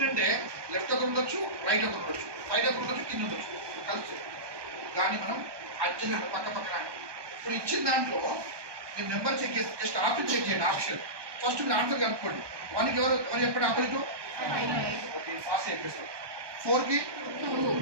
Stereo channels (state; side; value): late; left; 1.2 ms